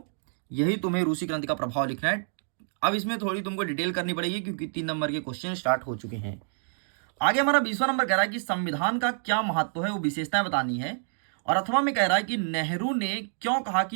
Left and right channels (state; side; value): silent; left; digital silence